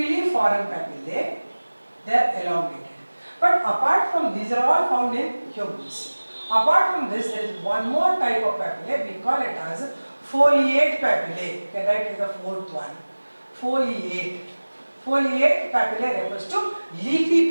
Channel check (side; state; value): both; inverted; correlation -1.00